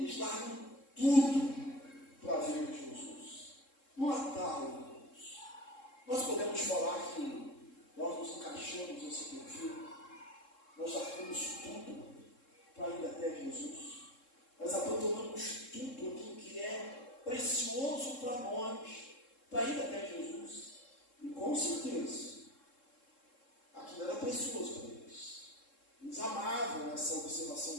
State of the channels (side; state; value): right; late; 3.7 ms